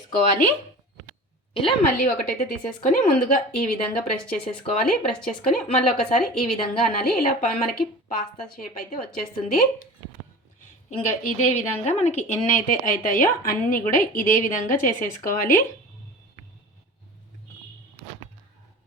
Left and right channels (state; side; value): normal; both; correlation 0.36